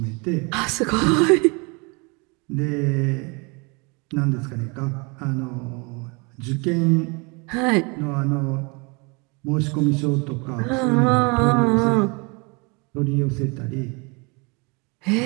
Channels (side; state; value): left; quieter; 29.9 dB